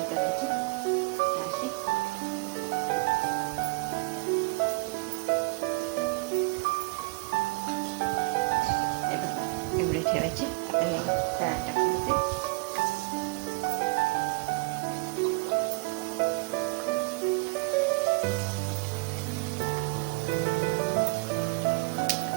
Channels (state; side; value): quieter; left; 27.3 dB